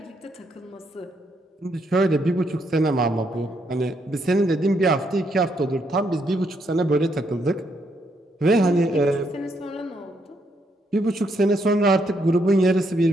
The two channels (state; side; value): normal; both; correlation 0.75